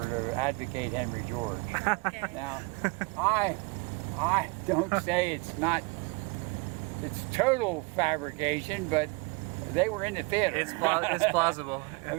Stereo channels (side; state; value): left; quieter; 28.5 dB